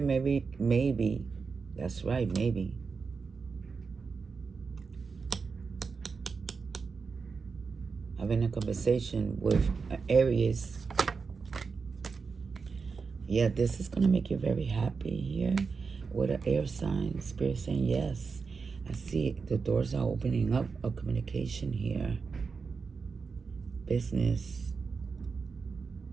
maybe. That's right, maybe. Having a conversation with Aries. Yeah, this is going to make you very happy here with an air sign. Spirit saying yes. I see the doors are opening up of communication here. Business.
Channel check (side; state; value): left; quieter; 5.0 dB